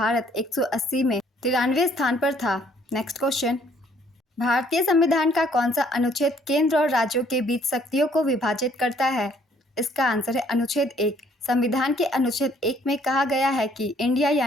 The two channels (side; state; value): both; normal; correlation 0.63